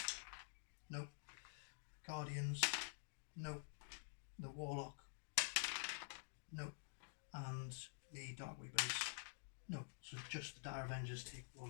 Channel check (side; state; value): right; silent; digital silence